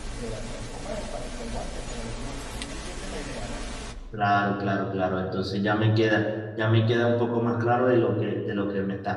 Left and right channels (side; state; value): both; identical; correlation 1.00